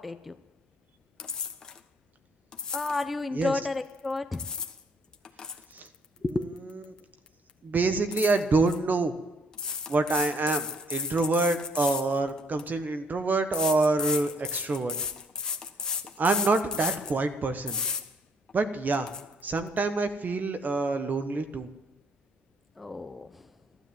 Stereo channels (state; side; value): normal; both; correlation 0.66